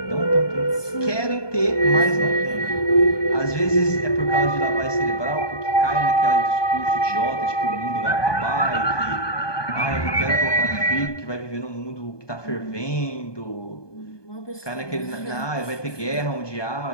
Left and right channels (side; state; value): right; late; 1.2 ms